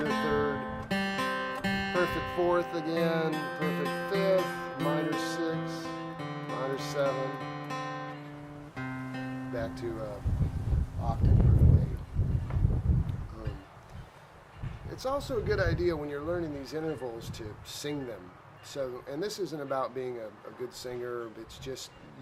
3rd, perfect 4th again, perfect 5th, minor 6, minor 7, back to octave, perfect 8. It's also a good idea when you're learning these intervals to sing them. So, and this isn't about being a good singer, it's just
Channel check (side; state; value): both; identical; correlation 1.00